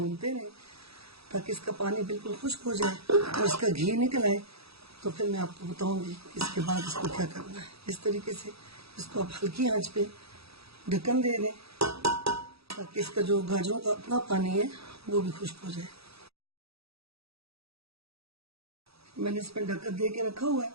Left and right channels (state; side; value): late; left; 0.77 ms